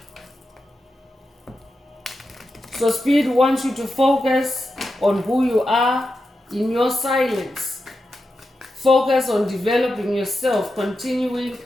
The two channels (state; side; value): normal; both; correlation 0.89